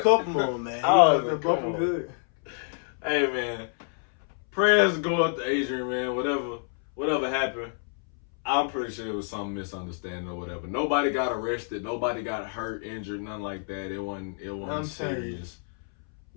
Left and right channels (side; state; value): right; silent; 60 dB below the other